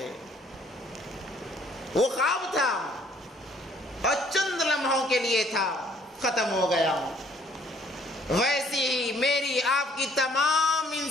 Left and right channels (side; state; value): both; normal; correlation 0.61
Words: وہ خواب تھا اور چند لمحوں کے لیے تھا، ختم ہو گیا۔ ویسی ہی میری آپ کی تمام